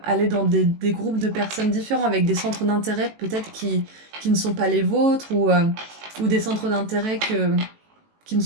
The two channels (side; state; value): left; late; 18 ms